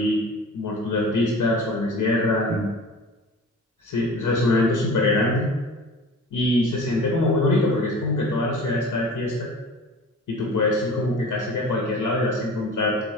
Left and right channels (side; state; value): both; normal; correlation 0.39